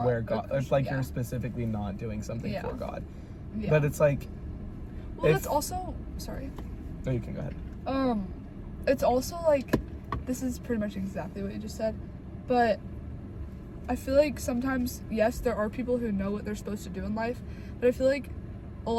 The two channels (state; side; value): identical; both; correlation 1.00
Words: where God, if like you're specifically not doing something for God. Yeah. But it's like, well, that's also, sorry. No, you can go ahead. It's also like, this is pretty much exactly what you just said, but I feel like sometimes, yes, there are people who know what they're supposed to do in life, but I feel like a